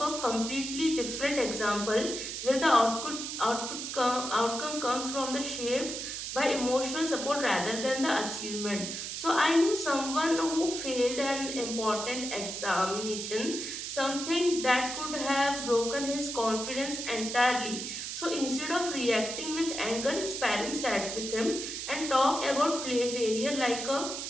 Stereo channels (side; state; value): right; noise; hiss, 5 dB below the sound